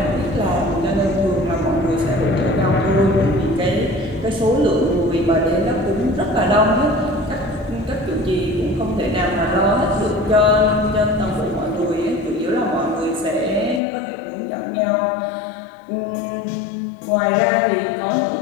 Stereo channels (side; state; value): right; drops out; at 13.8 s